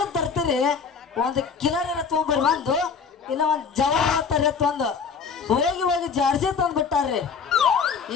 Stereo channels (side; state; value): right; quieter; 5.8 dB